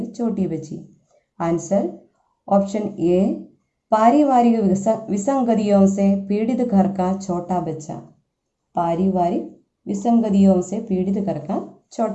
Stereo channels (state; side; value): identical; both; correlation 1.00